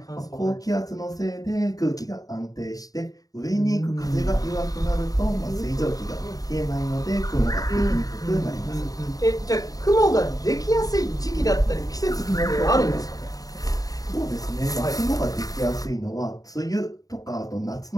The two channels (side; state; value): right; late; 0.18 ms